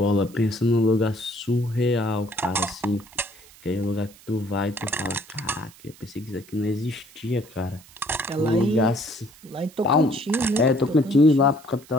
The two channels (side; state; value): right; noise; hiss, 23 dB below the sound